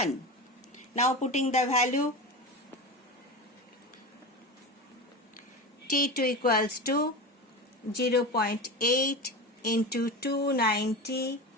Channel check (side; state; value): both; normal; correlation 0.25